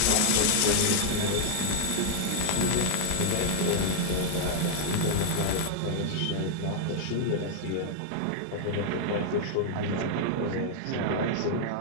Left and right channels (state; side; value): different; both; correlation 0.00